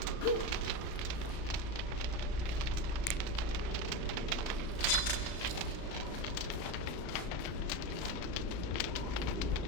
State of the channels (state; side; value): late; right; 35 ms